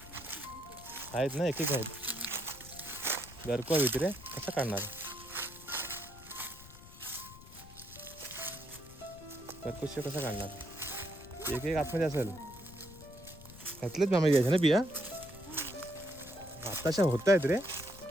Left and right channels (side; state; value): left; noise; rumble, 18 dB below the sound